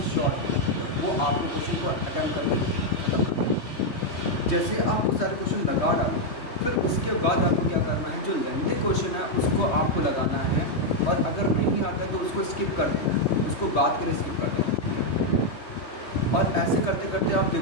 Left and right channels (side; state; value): right; late; 3.2 ms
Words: शॉर्ट है, वो आपको क्वेश्चन को अटैम्प्ट करके ख़त्म करना है। जैसे आप वो सारे क्वेश्चन लगा डालो फिर उसके बाद आपको क्या करना है, जो लेंथी क्वेश्चन है उसको आपको लगाना है और अगर नहीं आता तो उसको स्किप कर देना है, उसको बाद के लिए स्किप कर देना है। और ऐसे करते करते आप